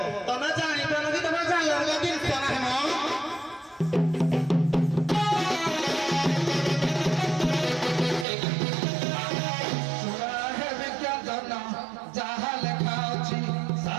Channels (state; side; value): drops out; left; at 8.2 s